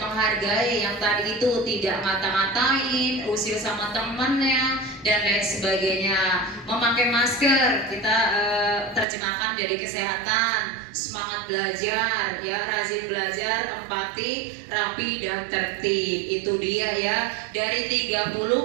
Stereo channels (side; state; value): left; drops out; at 9.1 s